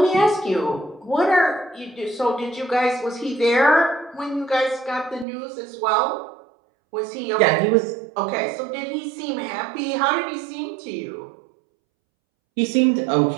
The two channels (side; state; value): left; drops out; at 5.2 s